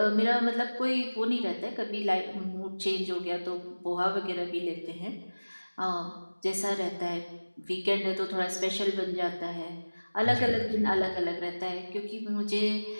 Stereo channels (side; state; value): both; inverted; correlation -1.00